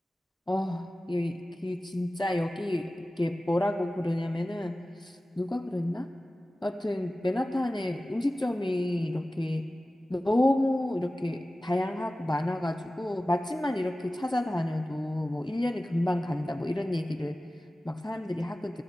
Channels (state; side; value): normal; both; correlation 0.96